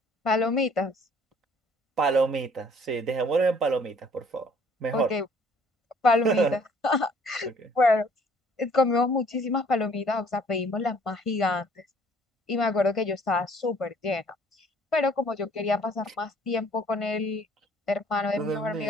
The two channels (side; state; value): both; normal; correlation 0.58